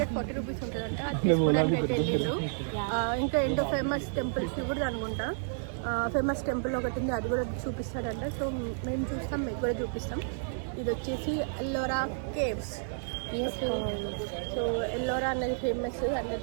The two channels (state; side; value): silent; left; digital silence